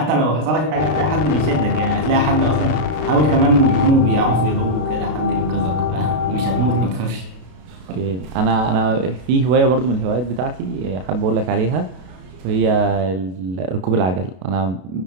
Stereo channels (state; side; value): late; left; 32 ms